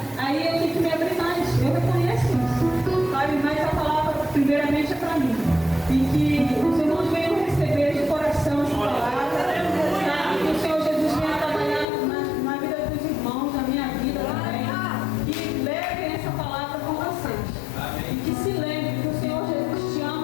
aí eu tenho que me abrir mais, eu reconheço isso. Sabe, mas a palavra primeiramente é para mim. E que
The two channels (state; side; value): drops out; right; at 11.9 s